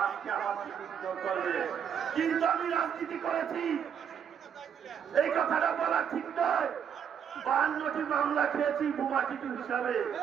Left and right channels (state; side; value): quieter; left; 8.0 dB